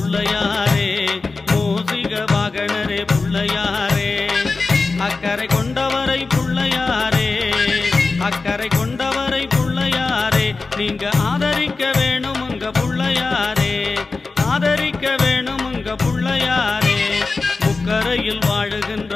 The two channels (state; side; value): quieter; right; 3.9 dB